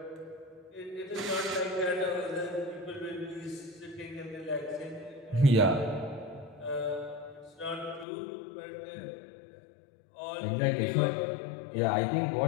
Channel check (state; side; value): drops out; right; at 8.1 s